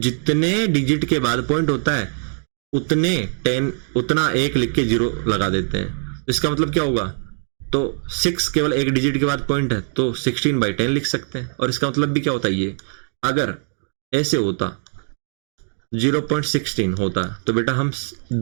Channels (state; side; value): silent; left; digital silence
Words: डिजिट के बाद पॉइंट होता है उतना 1 लिख के 0 लगा देते हैं। इसका मतलब क्या होगा, तो 6 केवल एक डिजिट के बाद पॉइंट है तो 16/10 लिख सकते हैं। और इसका मतलब भी क्या होता है, ये अगर ऐसे होता 0.16 होता तो बेटा हम